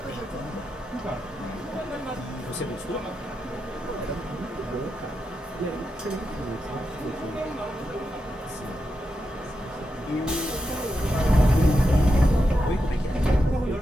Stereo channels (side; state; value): both; normal; correlation 0.87